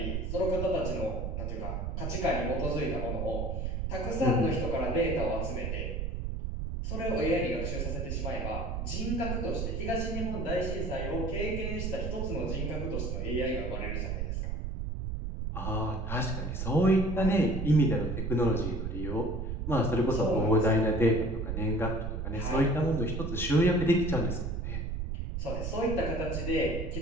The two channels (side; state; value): right; noise; rumble, 3 dB below the sound